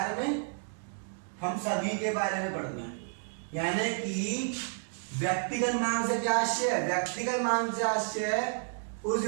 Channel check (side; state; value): left; silent; 57 dB below the other